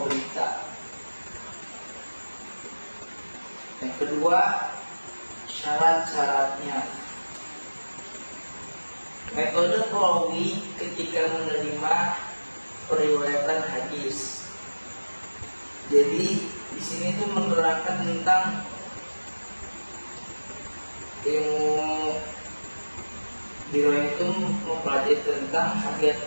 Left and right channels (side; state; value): both; inverted; correlation -1.00